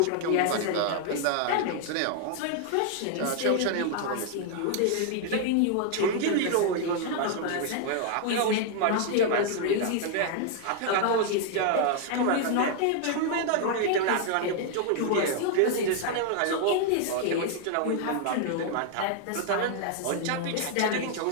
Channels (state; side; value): different; both; correlation 0.00